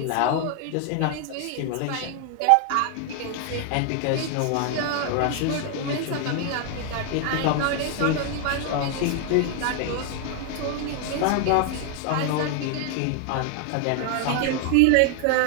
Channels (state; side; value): different; both; correlation 0.00